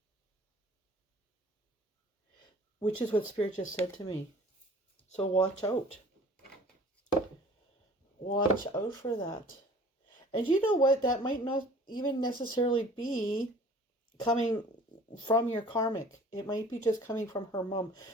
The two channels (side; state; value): both; normal; correlation 0.49